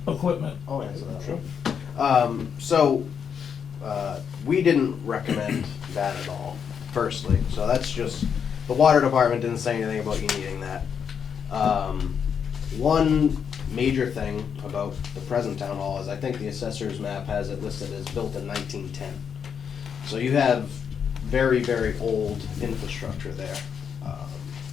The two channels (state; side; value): quieter; right; 7.3 dB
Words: equipment? I'll answer that. Sure. So, we didn't recommend that at all, firstly, so that's just, the water department didn't say anything about you needing that. One major thing about the present town hall is I think the assessor's map has it listed as built in 1910. So you have very, very old infrastructure there.